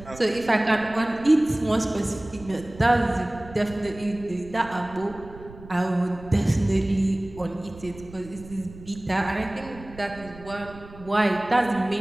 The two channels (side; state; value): right; noise; rumble, 18 dB below the sound